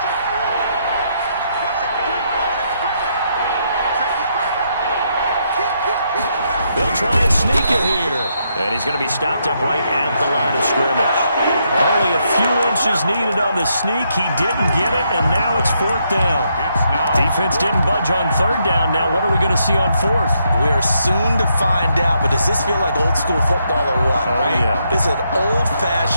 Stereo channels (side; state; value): both; inverted; correlation -0.77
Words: They'll try and sneak it here. And he's going to be stopped up right at the line of scrimmage. Only a few inches needed on the sneak. He didn't get it, and now it's fourth down. Defense didn't budge on third down. Now what are we going to see on fourth? We are soon to find out, but does this feel like old school football or what? Oh, right? Yeah. This is an